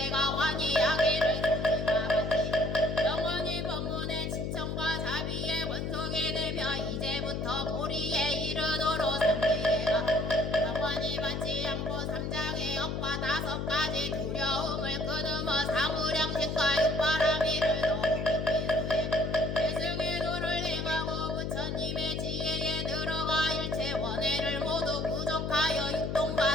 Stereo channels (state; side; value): noise; left; hum, 2 dB below the sound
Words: 환희하기를 조지와 같이 영원히 법문의 친청과 자비의 원속이 되며 이제부터 보리에 이르도록 삼계가 영원히 받지 않고 삼장의 억과 5가지 두려움을 끊으며 사무량신과 육바라미를 더욱 깊이 수행 대승의 도를 행하고 부처님의 지혜에 들어가 일체 원해를 모두 부족하여